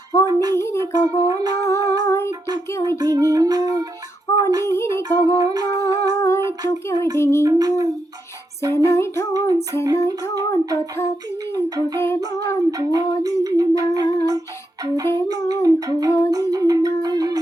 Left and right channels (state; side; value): normal; both; correlation 0.83